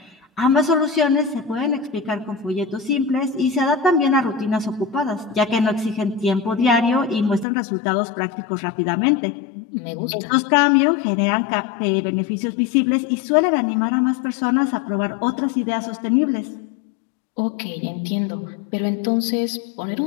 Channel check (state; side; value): drops out; right; at 7.5 s